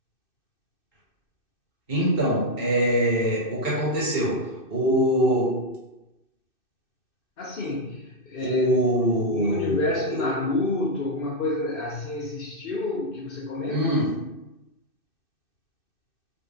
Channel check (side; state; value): right; late; 2.6 ms